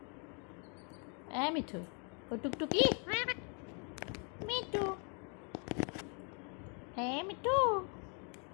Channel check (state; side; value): quieter; right; 38.0 dB